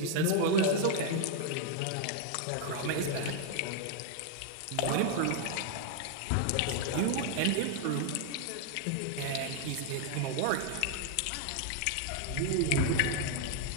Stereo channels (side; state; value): both; different; correlation 0.00